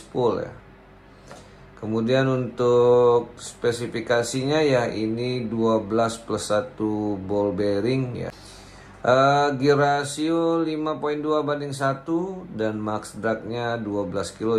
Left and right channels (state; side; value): identical; both; correlation 1.00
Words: ya. Kemudian untuk spesifikasinya ya ini 12+1 ball bearing ya. Gear ratio 5.2/1 dan max dragnya 12